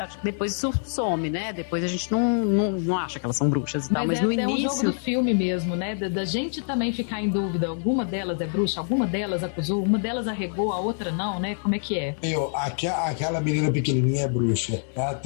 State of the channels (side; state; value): right; silent; digital silence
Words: some, né? Depois a gente não acha que elas são bruxas e tal, mas no início... É um jogo do filme mesmo, né? Da gente também ficar em dúvida, alguma delas é bruxa, alguma delas acusou, uma delas arregou, a outra não, né? Como é que é? Aquela menina pequenininha é bruxa. Ela